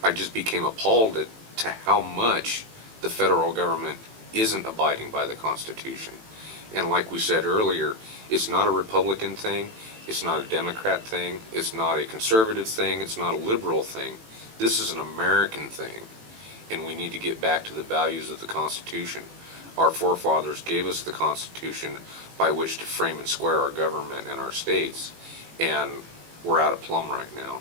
became appalled to how much the federal government isn't abiding by the Constitution. And like we said earlier, it's not a Republican thing. It's not a Democrat thing. It's not a conservative thing. It's not a liberal thing. This is an American thing, and we need to get back to the values of the Constitution. Our forefathers gave us the Constitution by which to frame and square our government and our states, and we're out of plumb right now.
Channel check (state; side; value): late; left; 18 ms